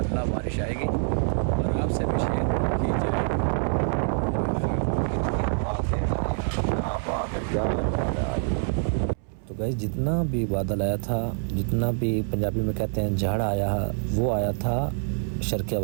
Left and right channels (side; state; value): left; silent; 61 dB below the other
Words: बारिश आएगी और आपसे भी शेयर की जाएगी। तो गाइस जितना भी बादल आया था, जितना भी पंजाबी में कहते हैं झाड़ आया, वो आया था शर्किया